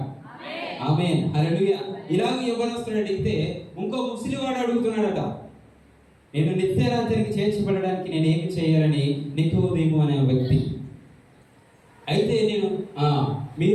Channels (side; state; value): both; identical; correlation 1.00